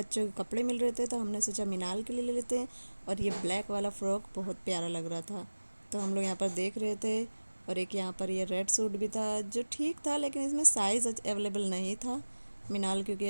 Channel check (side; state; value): both; inverted; correlation -1.00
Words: के कपड़े मिल रहे थे, तो हमने सोचा मिनाल के लिए ले लेते हैं। और ये ब्लैक वाला फ्रॉक बहुत प्यारा लग रहा था, तो हम लोग यहाँ पर देख रहे थे। और एक यहाँ पर ये रेड सूट भी था जो ठीक था, लेकिन इसमें साइज़ अवेलेबल नहीं था मिनाल, क्योंकि